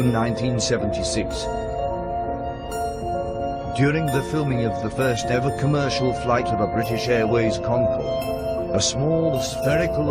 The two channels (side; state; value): both; identical; correlation 1.00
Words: 1976. During the filming of the first ever commercial flight of a British Airways Concorde, a small spherical